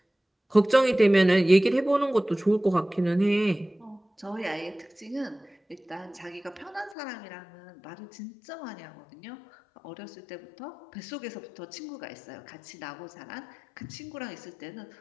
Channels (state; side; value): drops out; right; at 7.0 s